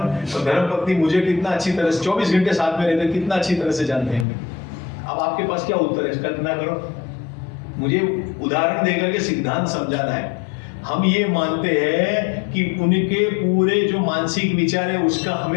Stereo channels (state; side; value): drops out; right; at 4.2 s